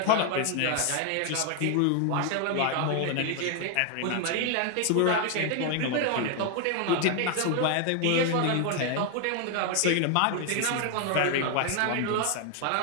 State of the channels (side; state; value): both; different; correlation 0.00